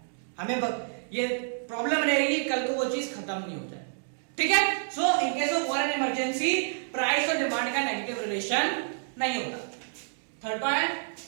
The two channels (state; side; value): silent; left; digital silence